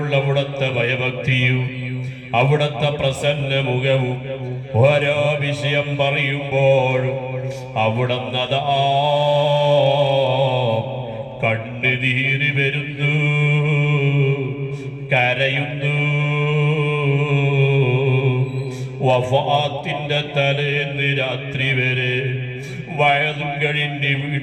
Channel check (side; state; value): both; identical; correlation 1.00